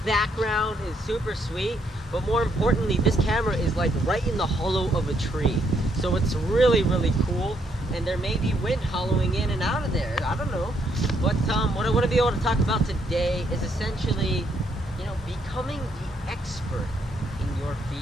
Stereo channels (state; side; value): normal; both; correlation 0.73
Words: background is super sweet, but more importantly, this camera is like right in the hollow of a tree. So it's really, really cool. And there may be wind hollowing in and out of there. I don't know. But what I want to be able to talk about today is essentially, becoming the expert in your